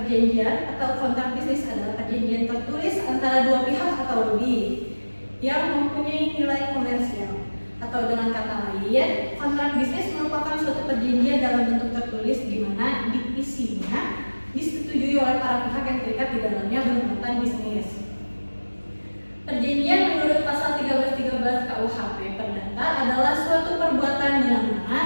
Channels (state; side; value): inverted; both; correlation -1.00